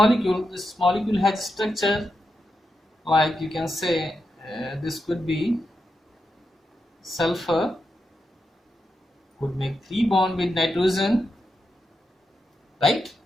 This molecule has structure like you can say this could be sulfur, could make 3 bond with nitrogen, right?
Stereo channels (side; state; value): both; normal; correlation 0.86